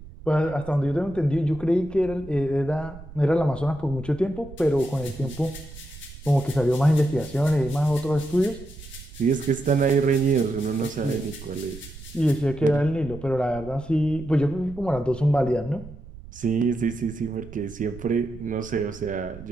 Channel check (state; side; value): noise; right; rumble, 17 dB below the sound